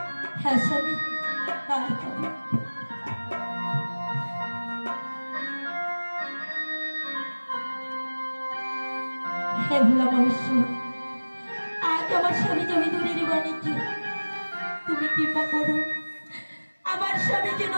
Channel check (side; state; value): both; inverted; correlation -1.00